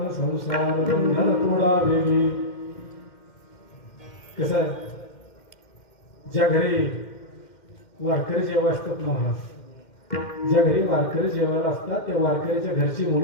संसार बंधन तोडा वेगळी. कसं आहे, ज्या घरी वारकरी जेव्हा असतात ना महाराज, ज्या घरी वारकरी जेवायला असतात त्या वारकऱ्याच्या घरची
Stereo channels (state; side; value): late; right; 2.1 ms